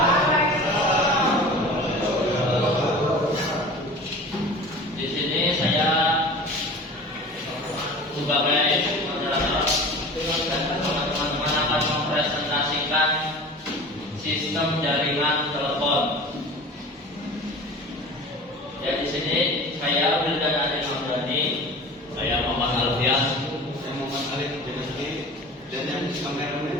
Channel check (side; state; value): both; normal; correlation 0.38